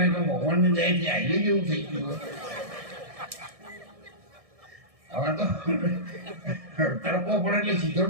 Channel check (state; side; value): late; left; 1.6 ms